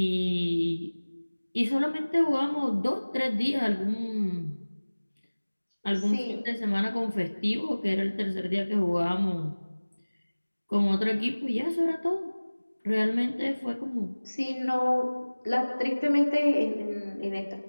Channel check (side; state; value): both; inverted; correlation -1.00